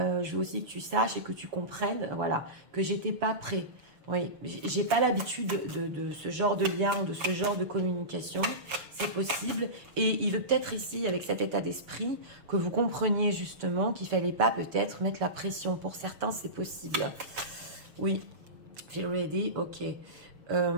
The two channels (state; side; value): late; left; 6.6 ms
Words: veux aussi que tu saches et que tu comprennes, voilà, que j'étais pas prêt. Oui, j'ai pas l'habitude de ce genre de lien, de ce genre de communication. C'est possible. Et il veut peut-être ici, avec cet état d'esprit, que vous compreniez justement qu'il fallait pas peut-être mettre la pression. Pour certains, c'est possible. Oui, feel ready, ok.